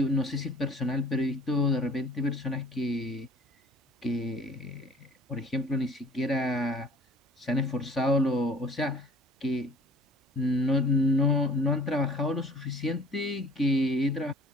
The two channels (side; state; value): both; normal; correlation 0.50